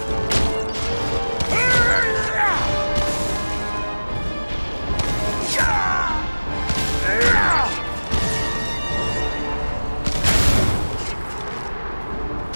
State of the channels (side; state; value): both; inverted; correlation -1.00